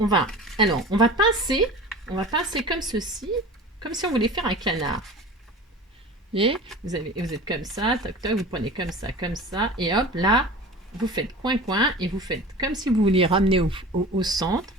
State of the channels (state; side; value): normal; both; correlation 0.37